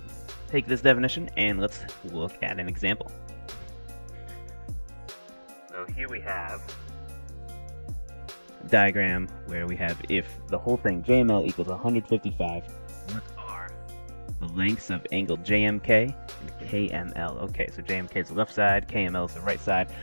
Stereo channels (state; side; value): inverted; both; correlation -1.00